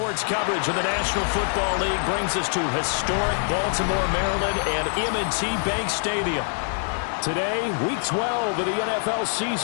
coverage of the National Football League brings us to historic Baltimore, Maryland, and M&T Bank Stadium. Today, Week 12 of the NFL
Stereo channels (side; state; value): right; silent; 60 dB below the other